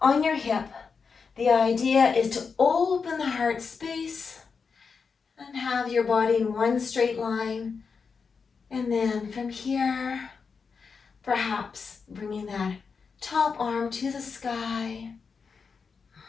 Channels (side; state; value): right; quieter; 5.4 dB